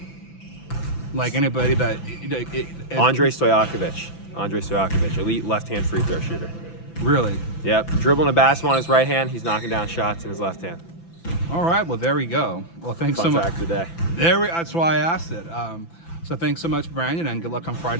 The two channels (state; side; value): late; right; 5.9 ms